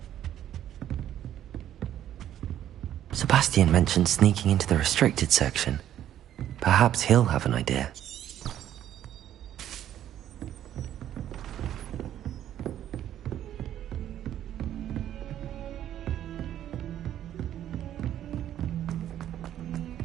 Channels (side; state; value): left; quieter; 11.3 dB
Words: Sebastian mentioned sneaking into the restricted section. Perhaps he'll have an idea.